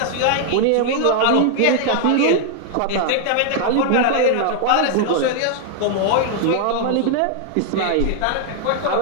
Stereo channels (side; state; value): both; different; correlation 0.00